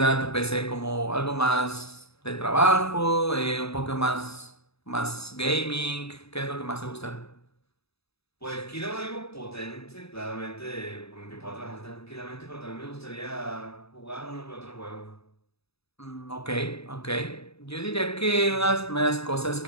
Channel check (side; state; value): right; late; 0.78 ms